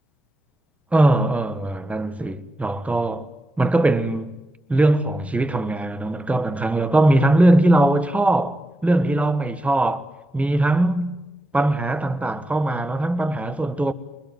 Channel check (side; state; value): both; normal; correlation 0.90